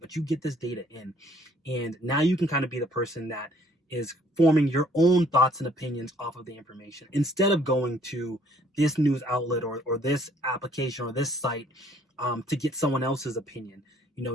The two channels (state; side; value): normal; both; correlation 0.61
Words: but you get this data in. And now you can kind of be the person that is forming your own thoughts and opinions off of the information instead of going to this news outlet or this application or this site to get someone else's opinion.